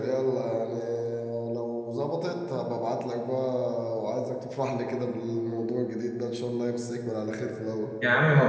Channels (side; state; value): both; identical; correlation 1.00